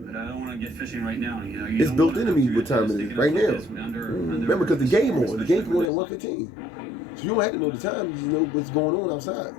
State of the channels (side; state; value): right; drops out; at 5.9 s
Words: But I don't want to get fishing right now. It's built into me what time it is right now. Remember, because the game on. The game can go at 1:15. So you don't have to know the time. You just know what's going on outside.